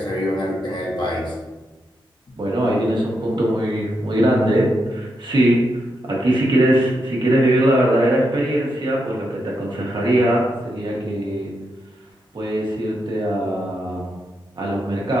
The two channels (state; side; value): normal; both; correlation 0.83